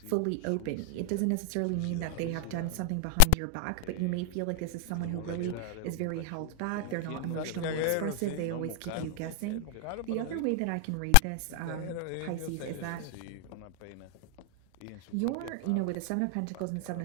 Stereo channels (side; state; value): both; different; correlation 0.00